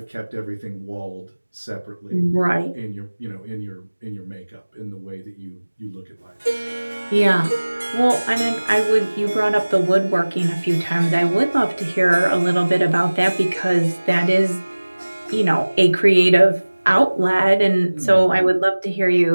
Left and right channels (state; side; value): inverted; both; correlation -1.00